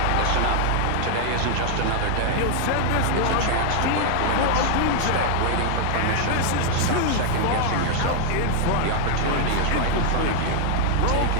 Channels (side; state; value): both; different; correlation 0.00